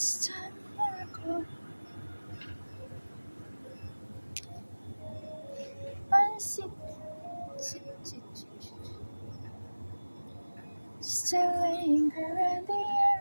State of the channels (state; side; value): inverted; both; correlation -1.00